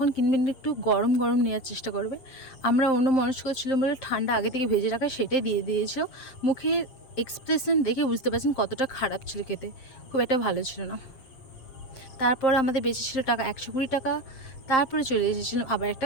কিনবেন একটু গরম গরম নেওয়ার চেষ্টা করবে। আমরা অন্য মনস্ক ছিলাম বলে ঠান্ডা আগে থেকে ভেজে রাখা সেটাই দিয়ে দিয়েছিল। মুখের এক্সপ্রেশন দেখে বুঝতে পারছেন কতটা খারাপ ছিল খেতে, খুব একটা ভালো ছিল না। তারপর আমাদের বেঁচে ছিল টাকা 120 টাকা। তারপরে চলে এসেছিলাম আবার একটা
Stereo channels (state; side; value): late; right; 7.6 ms